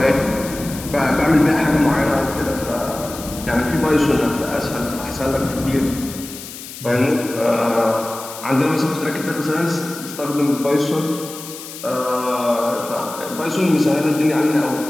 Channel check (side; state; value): left; noise; hiss, 13 dB below the sound